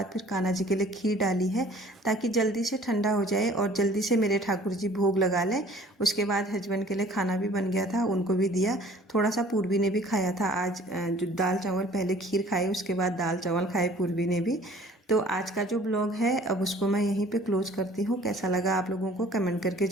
फिर कान्हा जी के लिए खीर डाली है ताकि जल्दी से ठंडा हो जाए और जल्दी से मेरे ठाकुर जी भोग लगा लें। उसके बाद हस्बैंड के लिए खाना भी बन गया था, उनको भी दिया। थोड़ा सा पूर्वी ने भी खाया था आज, जो दाल चावल पहले खीर खाए उसके बाद दाल चावल खाए पूर्वी ने भी। तो आज का जो ब्लॉग है अब उसको मैं यहीं पे क्लोज करती हूँ। कैसा लगा आप लोगों को कमेंट करके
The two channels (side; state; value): both; normal; correlation 0.52